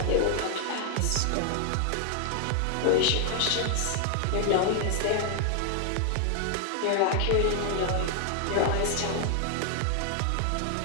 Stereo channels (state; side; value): different; both; correlation 0.00